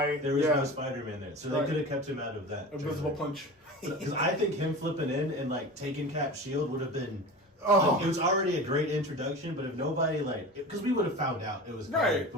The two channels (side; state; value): both; normal; correlation 0.32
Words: There was no Spider-Man there, so they could have kept him out of that. Invisible punch. Because I think him flipping in and taking Cap's shield would have been. Oh. It was already a great introduction, but if nobody because we would have found out it was Right,